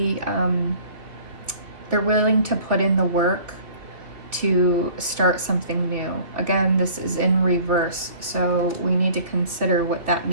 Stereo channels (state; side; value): late; left; 2.5 ms